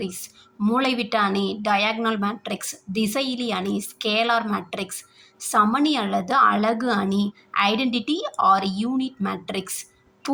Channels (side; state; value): both; identical; correlation 1.00